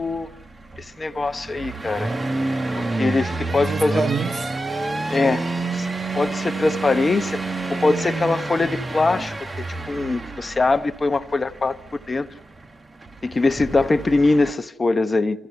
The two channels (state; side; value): normal; both; correlation 0.92